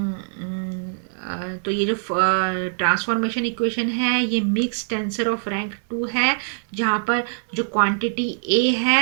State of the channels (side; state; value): left; silent; digital silence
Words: तो ये जो ट्रांसफॉर्मेशन इक्वेशन है ये मिक्स टेंसर ऑफ रैंक 2 है, जहाँ पर जो क्वांटिटी ए